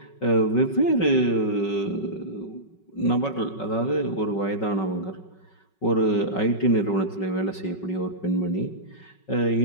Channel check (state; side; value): late; right; 5.3 ms